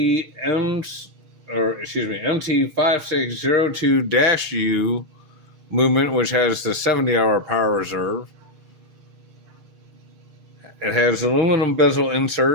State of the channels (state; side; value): late; left; 6.5 ms